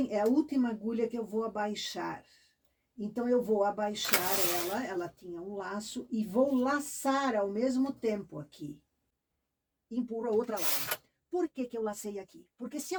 é a última agulha que eu vou abaixar. Então, eu vou abaixar ela tinha um laço, e vou laçar ao mesmo tempo aqui. Empurro a outra lá. Por que que eu lacei aqui? Porque se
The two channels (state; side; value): identical; both; correlation 1.00